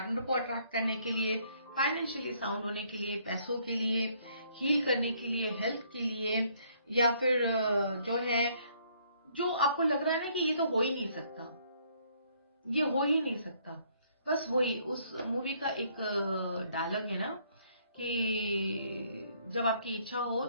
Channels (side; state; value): both; inverted; correlation -0.66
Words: को अट्रैक्ट करने के लिए, फाइनेंशियली साउंड होने के लिए, पैसों के लिए, हील करने के लिए, हेल्थ के लिए, या फिर जो है जो आपको लग रहा है ना कि ये तो हो ही नहीं सकता, ये हो ही नहीं सकता। बस वही उस मूवी का एक डायलॉग है ना, कि जब आपकी इच्छा हो